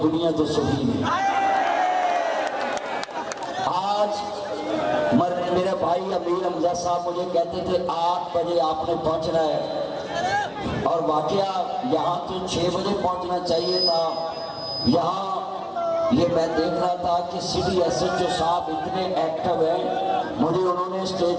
بڑیاں تو سخی نہیں۔ آج میرے بھائی امیر حمزہ صاحب مجھے کہتے تھے 8 بجے آپ نے پہنچنا ہے، اور واقعہ یہاں تو 6 بجے پہنچنا چاہیے تھا۔ یہاں یہ میں دیکھ رہا تھا کہ سٹی ایس ایچ او صاحب اتنے ایکٹیو ہیں، مجھے انہوں نے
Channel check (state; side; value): identical; both; correlation 1.00